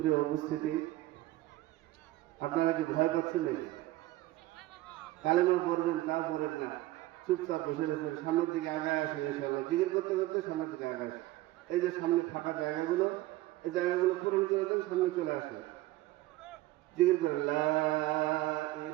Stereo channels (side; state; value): left; quieter; 17.2 dB